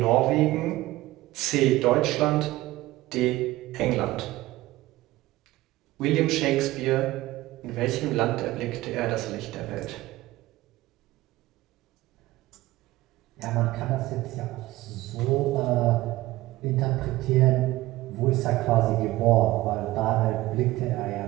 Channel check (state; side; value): quieter; left; 17.7 dB